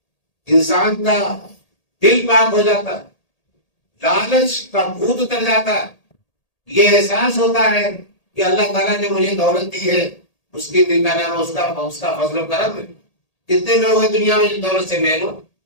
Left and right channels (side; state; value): right; late; 1.8 ms